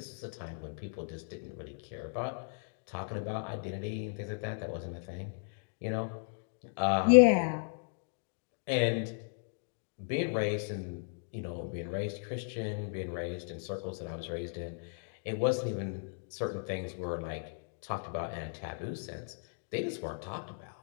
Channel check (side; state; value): right; silent; digital silence